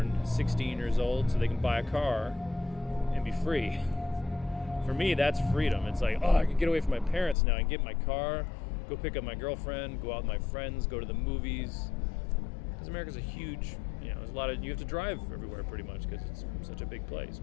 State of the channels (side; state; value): right; drops out; at 7.4 s